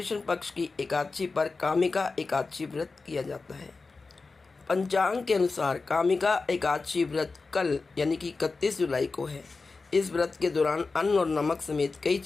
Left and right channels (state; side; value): quieter; right; 4.0 dB